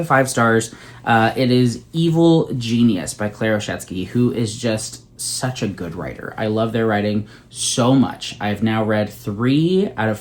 5 stars. It is Evil Genius by Claire Oshetsky, who is just such a good writer. I love their writing so much. I've now read 3 out of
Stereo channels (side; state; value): both; identical; correlation 1.00